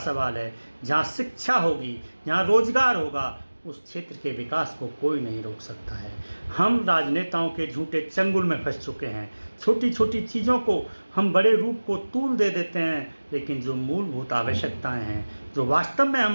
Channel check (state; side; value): inverted; both; correlation -1.00